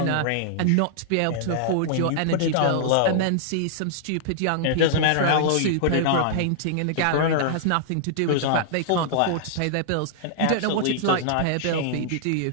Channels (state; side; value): different; both; correlation -0.01